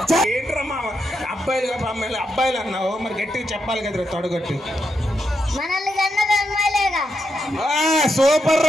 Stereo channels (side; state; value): both; normal; correlation 0.83